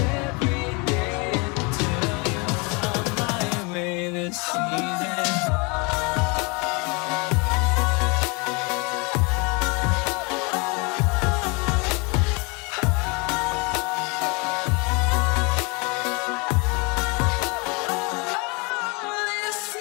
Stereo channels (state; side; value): quieter; right; 30.1 dB